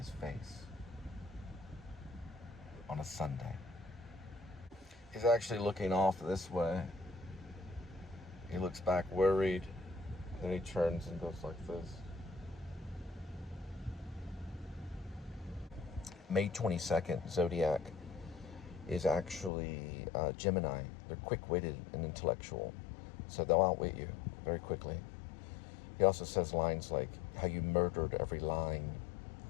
face on a Sunday. He's actually looking off this way. He looks back worried, then he turns and goes like this. May 22nd, Zodiac is actually Gemini. They're quick-witted and intellectual, so they'll outwit you very quickly. He also says lines like, how you murdered every line.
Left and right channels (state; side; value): drops out; right; at 19.5 s